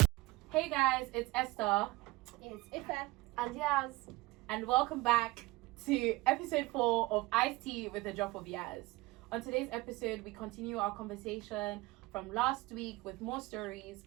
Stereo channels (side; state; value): left; quieter; 20.9 dB